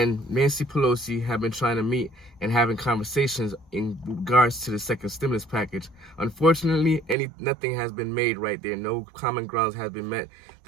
Nancy Pelosi have been trying to meet and having conversations in regards to the second stimulus package. Unfortunately, nothing has been made right there. No common grounds has been met.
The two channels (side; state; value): left; drops out; at 7.2 s